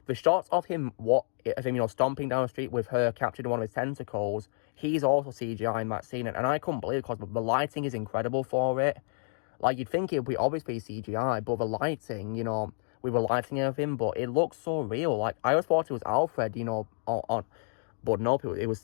the shots of him stomping down the street with her captured in one of his tentacles he's also CGI in that scene, and I couldn't believe it because the lighting is incredible for it. Like, you'd think it would be obviously CGI, but the lighting, you know, we were lighting everything, but it looks so real. Like, I always thought it was Alfred, you know, but nope, it was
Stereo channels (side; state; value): right; silent; digital silence